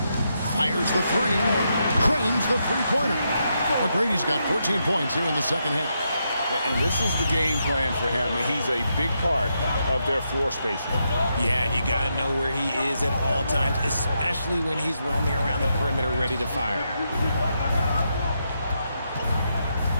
Fires the three. Cranes the three-pointer. McGrady's got 14 points here in the second half. And this is the game plan for him. He's a big part of their floor spacing. Yeah, and you got to know where he is at all times, especially when he's roaming around the perimeter ready to fire.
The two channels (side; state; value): both; inverted; correlation -0.82